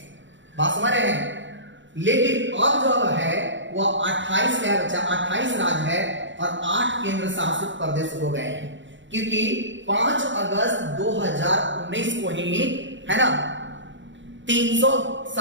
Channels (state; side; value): late; left; 0.54 ms